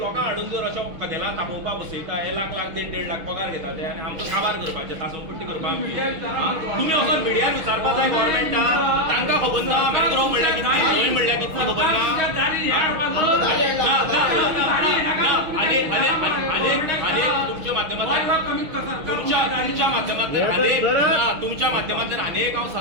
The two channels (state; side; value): late; left; 6.3 ms